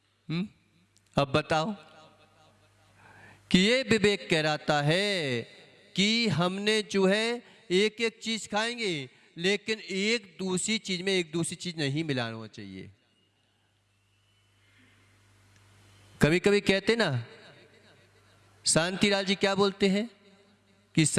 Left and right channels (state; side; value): identical; both; correlation 1.00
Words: अब बताओ कि ये विवेक कहलाता है कि हमने जो है एक एक चीज खाएंगे, लेकिन एक दूसरी चीज में एक दूसरी चीज नहीं मिलाना चाहिए। कभी कभी कहते ना, शांतिलाल जी क्या बोलते हैं कि